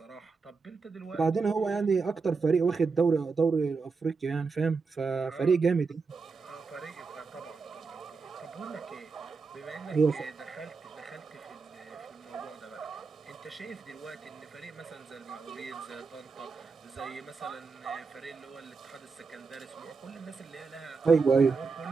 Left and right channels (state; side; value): quieter; left; 4.7 dB